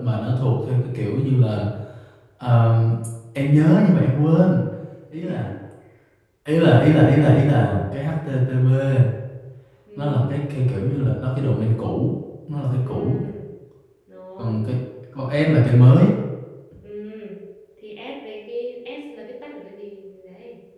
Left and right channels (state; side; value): identical; both; correlation 1.00